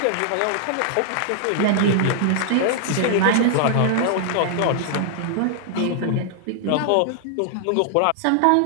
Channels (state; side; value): different; both; correlation 0.00